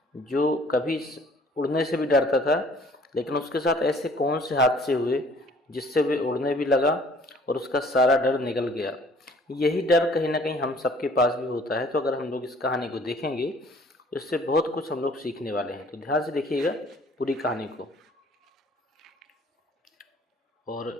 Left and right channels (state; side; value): normal; both; correlation 0.56